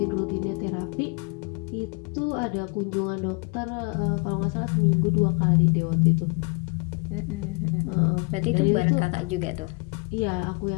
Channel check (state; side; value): quieter; right; 31.0 dB